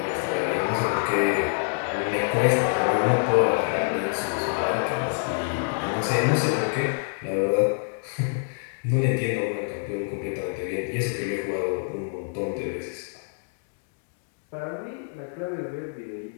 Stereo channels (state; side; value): silent; right; digital silence